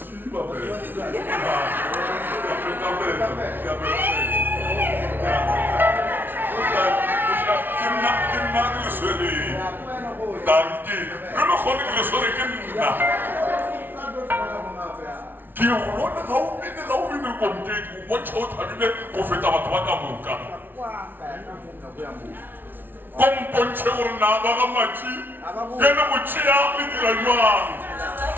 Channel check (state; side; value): late; left; 0.096 ms